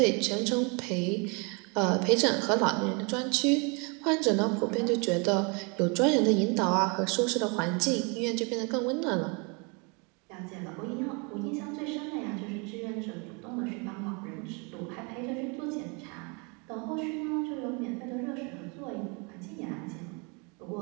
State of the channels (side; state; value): left; quieter; 32.5 dB